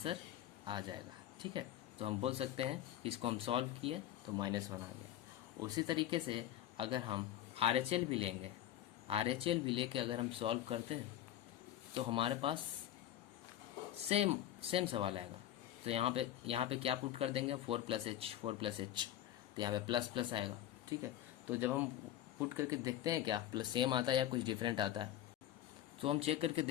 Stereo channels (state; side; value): quieter; right; 12.2 dB